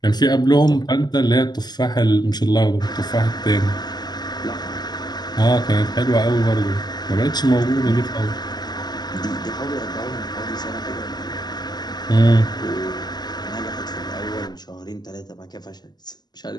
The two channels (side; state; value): right; late; 0.20 ms